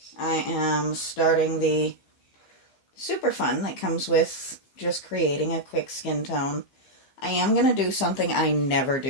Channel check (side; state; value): right; late; 15 ms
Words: I am starting the super fun that comes with just creating a quick skin tone. I am going to do something I never